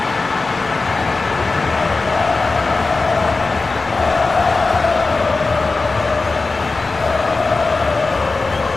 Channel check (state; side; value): quieter; right; 3.7 dB